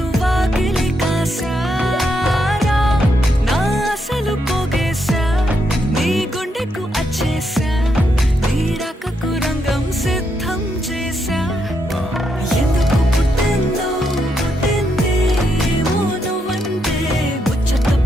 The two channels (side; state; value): both; normal; correlation 0.80